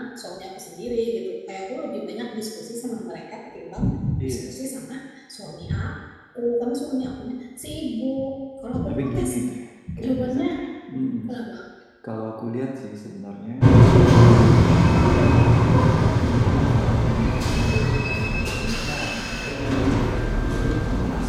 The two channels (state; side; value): identical; both; correlation 1.00